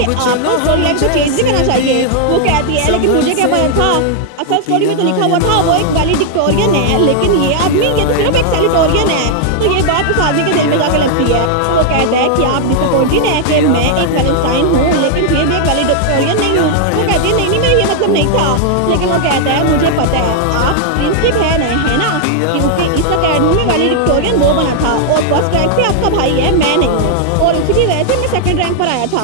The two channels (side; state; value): both; different; correlation 0.00